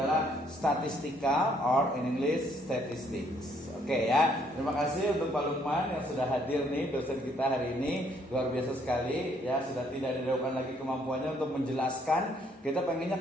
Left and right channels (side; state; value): both; normal; correlation 0.67